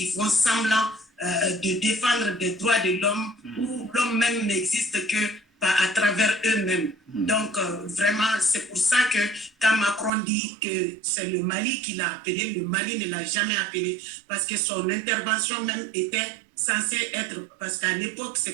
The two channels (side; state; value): left; drops out; at 10.1 s